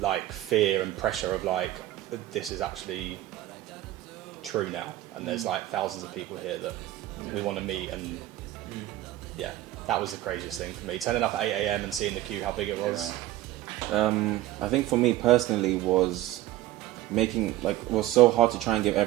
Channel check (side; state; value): left; quieter; 15.2 dB